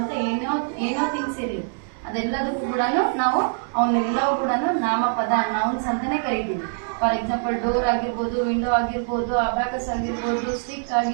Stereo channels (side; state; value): left; silent; 63 dB below the other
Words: ಏನೋ ಥಿಂಗ್ಸ್ ಇರಲಿ ಅದೆಲ್ಲದಕ್ಕೂ ಕೂಡ ನಾವು ಅವನ್ನೆಲ್ಲವೂ ಕೂಡ ನಾಮಪದ ನೌನ್ಸ್ ಅಂತಾನೆ ಕರಿತೀವಿ. ಫಾರ್ ಎಕ್ಸಾಂಪಲ್ ಡೋರ್ ಆಗಿರ್ಬೋದು, ವಿಂಡೋ ಆಗಿರ್ಬೋದು, ಅಬಾಕಸ್ ಆಗಿರ್ಬೋದು, ಸ್ಟಿಕ್